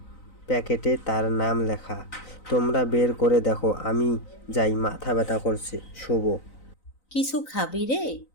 প্যাকেটে তার নাম লেখা। তোমরা বের করে দেখো, আমি যাই, মাথা ব্যথা করছে, শুভ। কিছু খাবি রে?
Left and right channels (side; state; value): right; late; 3.9 ms